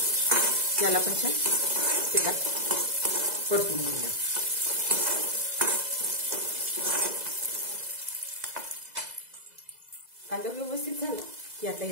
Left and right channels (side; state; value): left; late; 2.0 ms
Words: याला पण छान तेलात परतून घेऊया। कांदा व्यवस्थित झाला की आता